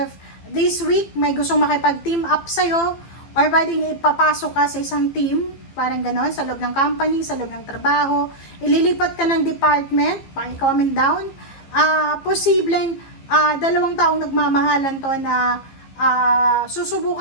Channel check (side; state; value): right; late; 15 ms